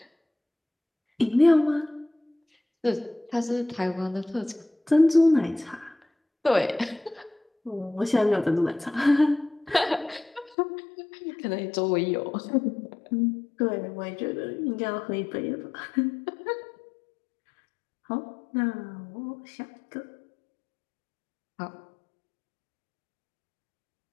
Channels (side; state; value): right; drops out; at 10.6 s